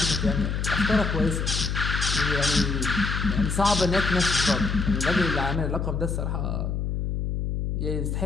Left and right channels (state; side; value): noise; left; hum, 1 dB below the sound